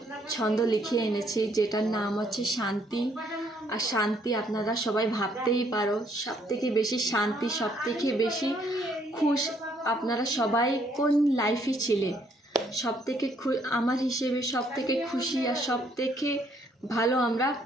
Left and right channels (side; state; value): both; normal; correlation 0.68